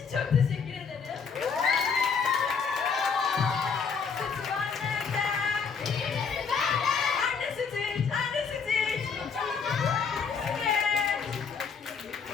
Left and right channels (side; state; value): right; quieter; 5.9 dB